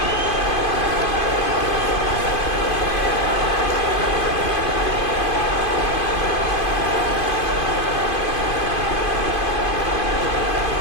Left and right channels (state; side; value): late; right; 2.5 ms